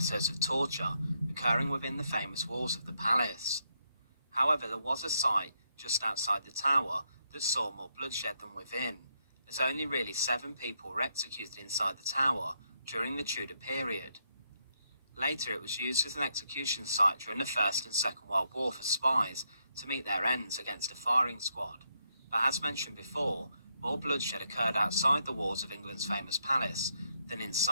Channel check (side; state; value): both; inverted; correlation -0.78